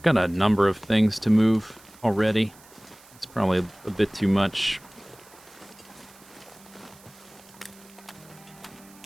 got a number of things to move already. It's probably a bit too much.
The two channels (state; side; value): noise; right; hiss, 24 dB below the sound